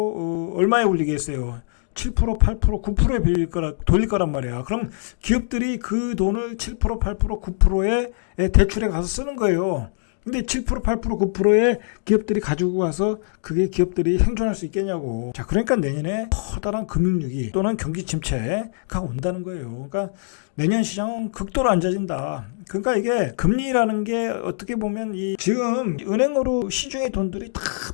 얼마에 올리겠어요? 7%, 8%, 9%에 돌릴 거란 말이야. 그럼 기업들이 그 돈을 7%, 8%, 9%에 대출에 가서 쓰는 거예요. 근데 7%, 8%, 9%의 기업들이 가지고 가서 그게 기업들이 생존할 수 있겠냐고. 자, 그러니까 내년에 커다란 금융위기 또는 경기 침체가 온다는 거예요. 그러니까 내년 시장은 극도로 안 좋아진다. 그러니까 이게 금리라는 게 어떻게 보면 지금 은행으로 시중의 돈들이 다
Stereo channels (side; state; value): right; silent; digital silence